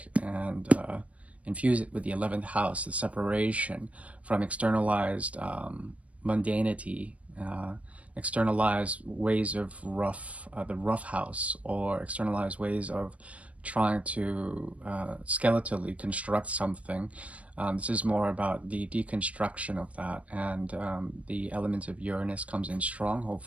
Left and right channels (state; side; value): late; left; 0.065 ms